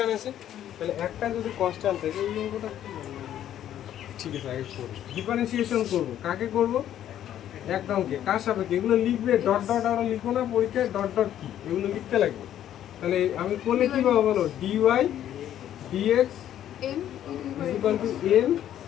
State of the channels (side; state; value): right; quieter; 11.2 dB